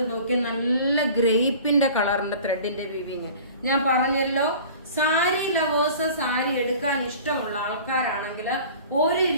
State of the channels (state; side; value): inverted; both; correlation -0.44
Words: നോക്കി നല്ല ഗ്രേപ്പിന്റെ കളറിന്റെ ത്രെഡിന്റെ വീവിങ്. ഞാൻ പറഞ്ഞല്ലോ, സാരി ലവേഴ്സ്, സാരി എടുക്കാൻ ഇഷ്ടമുള്ള ആൾക്കാരാണെങ്കിൽ ഒരു